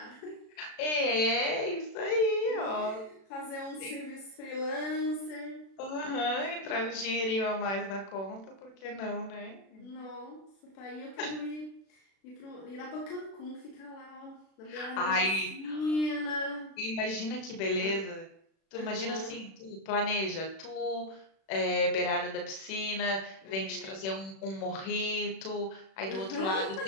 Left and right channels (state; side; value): late; right; 36 ms